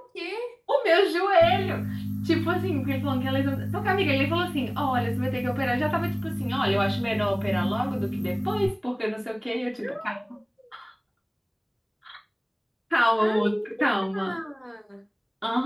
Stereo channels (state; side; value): identical; both; correlation 1.00